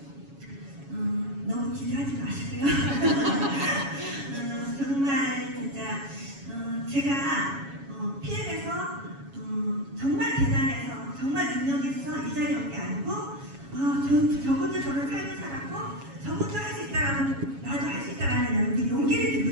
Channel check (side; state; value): left; late; 7.2 ms